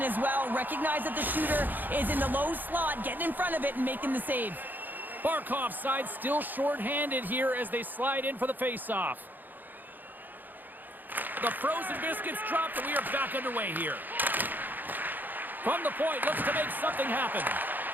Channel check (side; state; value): left; late; 0.088 ms